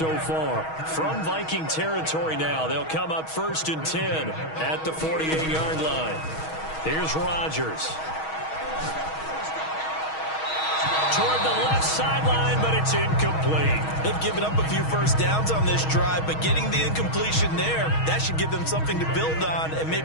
far. From Viking territory now, they'll come up 1st and 10 at the 48-yard line. Here's Rodgers. Toward the left sideline, but it's incomplete. They've given up a few first downs on this drive, but getting the incompletion there, that should give them something to build on and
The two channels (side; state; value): right; late; 6.3 ms